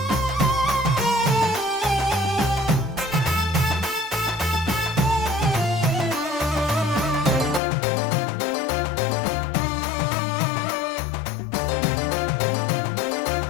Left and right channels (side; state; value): right; drops out; at 7.6 s